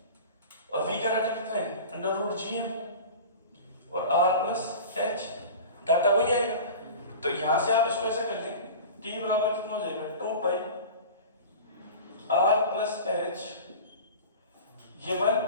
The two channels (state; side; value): inverted; both; correlation -0.35